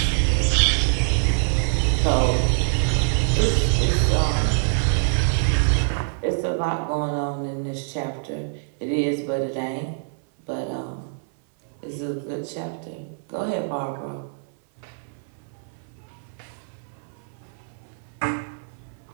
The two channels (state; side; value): silent; left; 60 dB below the other